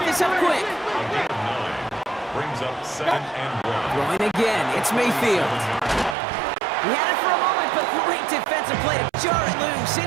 this up quick. brings up 2nd and 1. Throwing again, it's Mayfield. He had it for a moment, but great defensive play to jar it loose.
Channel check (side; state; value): left; drops out; at 6.2 s